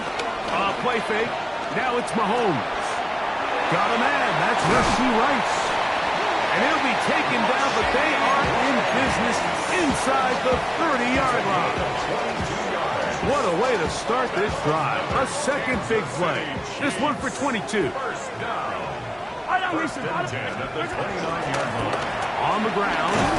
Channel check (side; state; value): both; identical; correlation 1.00